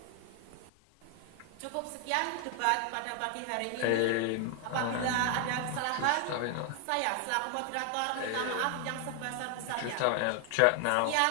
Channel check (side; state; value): both; different; correlation 0.01